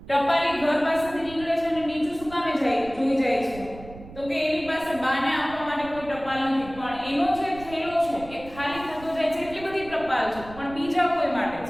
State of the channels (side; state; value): right; noise; rumble, 17 dB below the sound